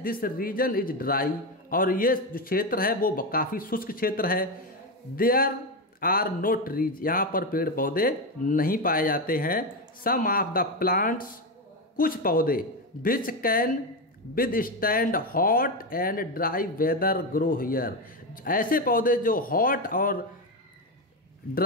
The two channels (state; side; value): normal; both; correlation 0.12